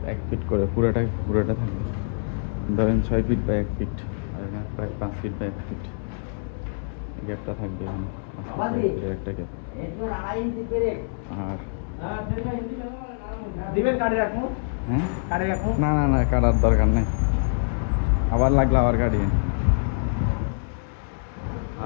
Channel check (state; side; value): silent; right; digital silence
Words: 1 ফিট করে, পুরোটা থাকবে। ধরেন 6 ফিট বা 1 ফিট, আর এখানে প্রায় 5 ফিট বা 1 ফিট গ্যাপটা থাকবে। এখানে 5 ফিট বা 1 ফিটের একটা গ্যাপ। আর হ্যাঁ, না না না, কাটার দরকার নাই, আবার লাগলে আবার কাটিয়ে।